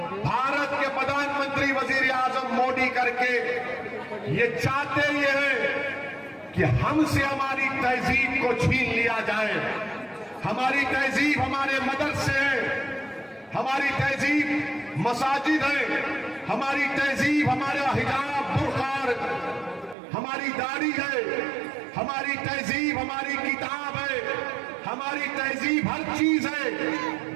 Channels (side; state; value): left; drops out; at 20.0 s